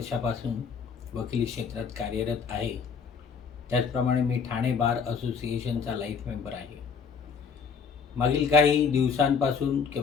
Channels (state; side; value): quieter; right; 6.0 dB